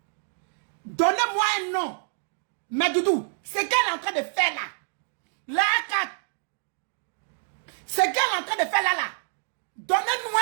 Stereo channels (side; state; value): left; silent; 60 dB below the other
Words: Donnez-moi un nom. Mais Doudou, c'est qu'elle est en train de faire là. Là, c'est qu'elle est en train de faire là. Donnez-nous